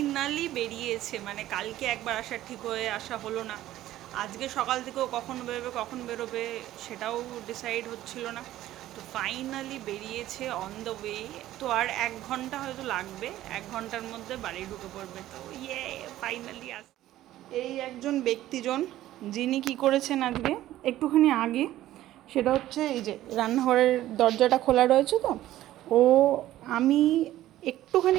বেরিয়েছে, মানে কালকে একবার আসার ঠিক হয়ে আসা হলো না, আজকে সকাল থেকেও কখন বেরোবে সেটাও ডিসাইড হচ্ছিল না। তো ফাইনালি বেরিয়েছে অন দ্য ওয়ে। তো আর 1 ঘন্টা হয়তো লাগবে, 1 ঘন্টার মধ্যে বাড়ি ঢুকে পড়বে। তো ফাইনালি এই একজন ব্যক্তিজন যিনি কি করেছেন আজকে একটুখানি আগে, সেটা হচ্ছে এই যে রান্নাঘরের দরজাটা খোলা রয়েছে, তো আমি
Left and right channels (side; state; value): left; quieter; 14.2 dB